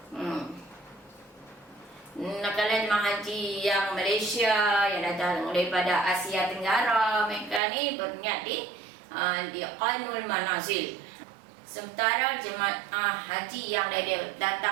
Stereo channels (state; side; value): drops out; left; at 7.6 s